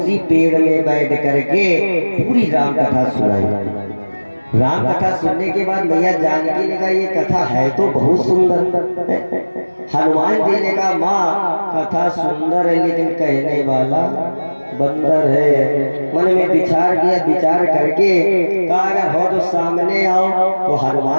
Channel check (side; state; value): both; inverted; correlation -1.00